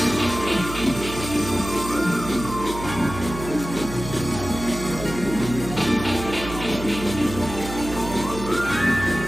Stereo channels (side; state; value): right; noise; hum, 10 dB below the sound